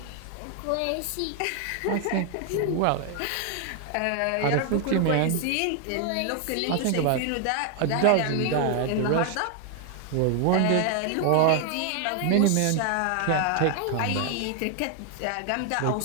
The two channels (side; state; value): both; different; correlation 0.00